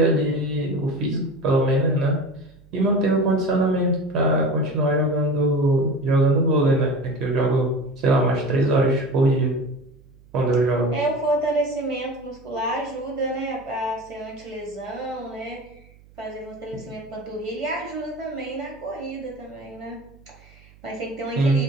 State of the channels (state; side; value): noise; right; hum, 26 dB below the sound